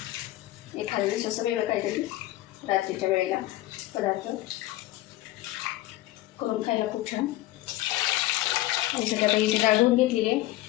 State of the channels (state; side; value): quieter; right; 16.6 dB